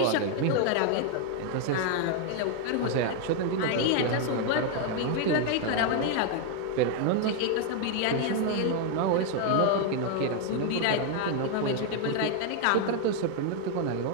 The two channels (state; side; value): different; both; correlation 0.00